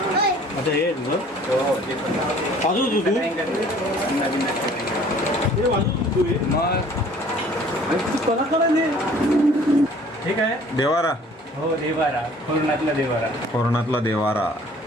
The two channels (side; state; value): both; normal; correlation 0.53